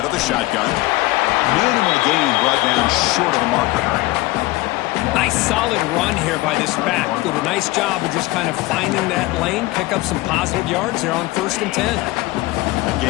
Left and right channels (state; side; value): quieter; right; 19.6 dB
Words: of the shotgun. Minimal gain brought down short of the marker. Nice solid run here by this back. Did a nice job of just kind of finding that lane, pick up some positive yards there on 1st and 10. That